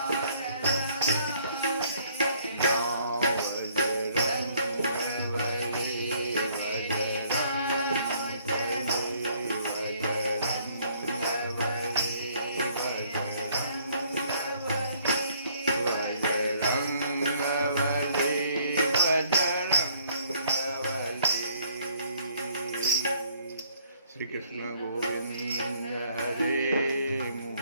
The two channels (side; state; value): both; inverted; correlation -0.64